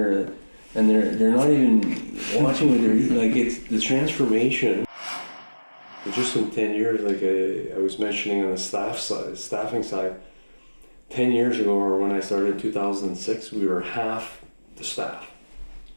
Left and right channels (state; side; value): inverted; both; correlation -1.00